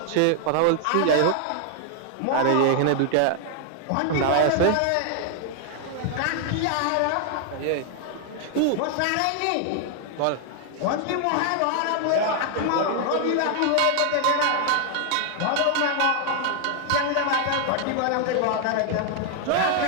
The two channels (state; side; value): different; both; correlation 0.00